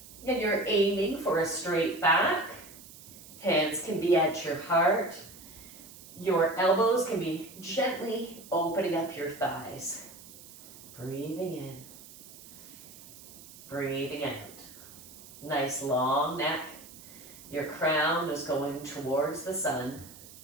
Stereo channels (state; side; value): noise; right; hiss, 18 dB below the sound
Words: And you're aiming for a straight back. Hands can be at your heart. Your elbows can be gently opening up your thighs. Breathing in. Breathing out. Nice long neck. Your crown is going towards the sun.